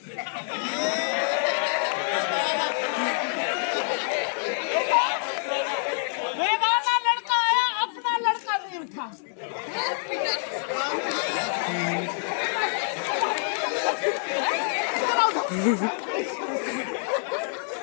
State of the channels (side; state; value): right; silent; 61 dB below the other